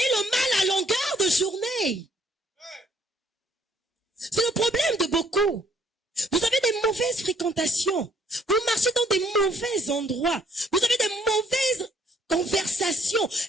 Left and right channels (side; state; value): both; normal; correlation 0.64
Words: le mal à longueur de journée. C'est le problème de beaucoup. Vous avez des mauvaises fréquentations. Vous marchez dans des mauvais endroits. Vous avez des mauvaises conversations